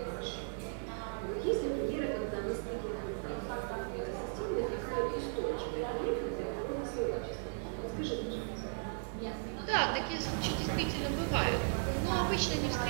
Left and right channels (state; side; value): silent; left; digital silence